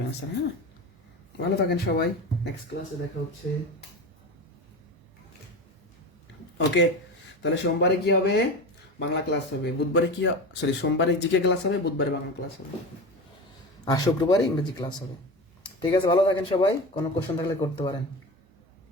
অ্যান্সার। হ্যাঁ, ভালো থাকেন সবাই, নেক্সট ক্লাসে দেখা হচ্ছে। ওকে, তাহলে সোমবারে কি হবে? বাংলা ক্লাস হবে। বুধবারে কি, সরি, সোমবারে জিকে ক্লাস হবে, বুধবারে বাংলা ক্লাস হবে, আর শুক্রবারে ইংরেজি ক্লাস হবে। ঠিক আছে, ভালো থাকেন সবাই, কোনো কোশ্চেন থাকলে করতে পারেন।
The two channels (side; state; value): both; normal; correlation 0.27